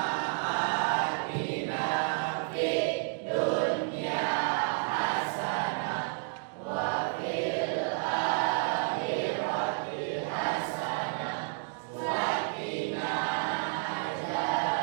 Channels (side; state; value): left; silent; 57 dB below the other